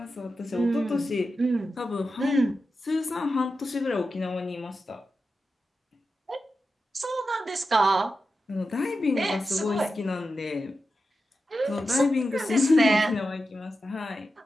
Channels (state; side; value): normal; both; correlation 0.91